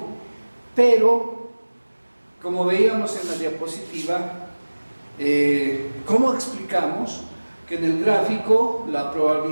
Pero, como veíamos en la diapositiva, ¿cómo explicamos que en el gráfico la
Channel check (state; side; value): inverted; both; correlation -1.00